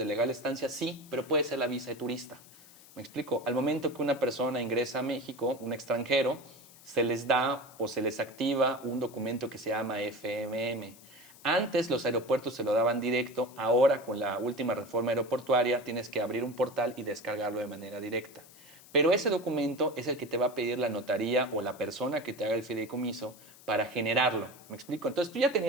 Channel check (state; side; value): noise; left; hiss, 22 dB below the sound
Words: legal estancia, sí, pero puede ser la visa de turista. ¿Me explico? Al momento que una persona ingresa a México, un extranjero, se les da o se les activa un documento que se llama FMM. Antes los aeropuertos se lo daban directo, ahora con la última reforma aeroportuaria tienes que abrir un portal y descargarlo de manera directa. Pero ese documento es el que te va a pedir la notaría o la persona que te haga el fideicomiso para generarlo. ¿Me explico? Entonces tú ya